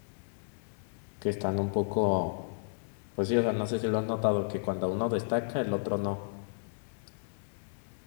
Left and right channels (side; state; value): right; silent; digital silence